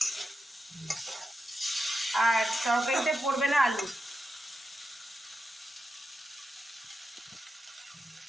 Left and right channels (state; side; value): normal; both; correlation 0.88